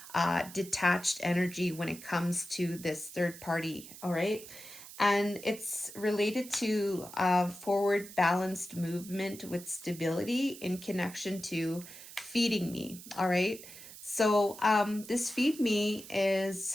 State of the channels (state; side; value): noise; right; hiss, 15 dB below the sound